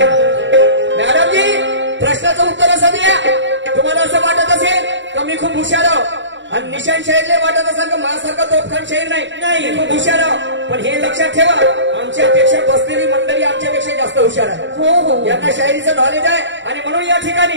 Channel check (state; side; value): late; left; 0.54 ms